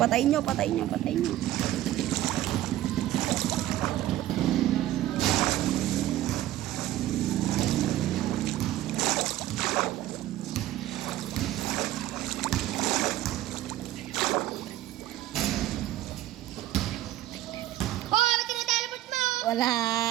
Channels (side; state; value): left; quieter; 14.4 dB